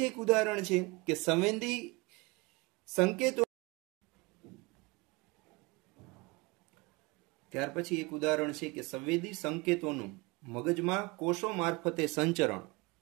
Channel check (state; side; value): quieter; left; 25.6 dB